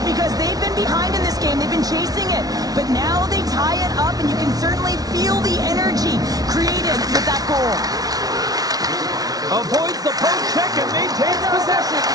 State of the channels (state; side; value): late; left; 0.18 ms